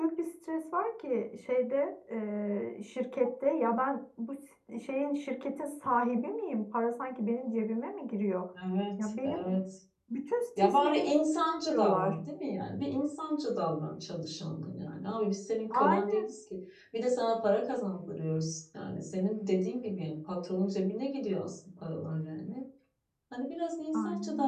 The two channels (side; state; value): both; identical; correlation 1.00